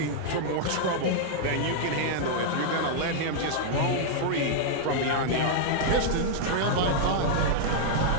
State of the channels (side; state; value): both; different; correlation -0.01